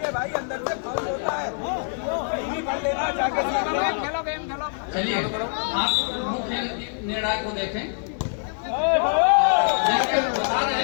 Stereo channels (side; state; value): right; silent; digital silence